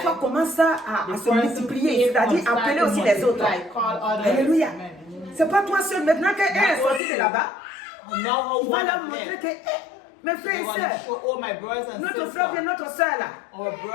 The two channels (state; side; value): drops out; right; at 7.0 s